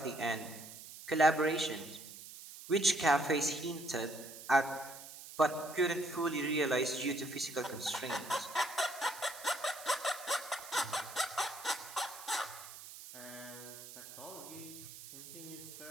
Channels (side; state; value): right; noise; hiss, 14 dB below the sound